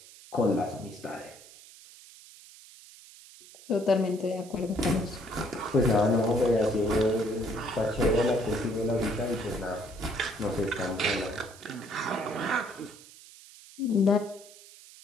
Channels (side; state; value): right; noise; hiss, 20 dB below the sound